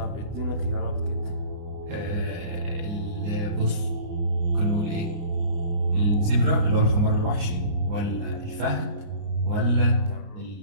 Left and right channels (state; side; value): late; left; 29 ms